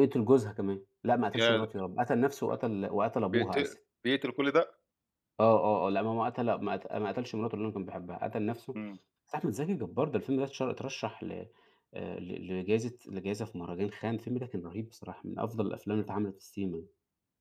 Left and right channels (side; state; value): both; identical; correlation 1.00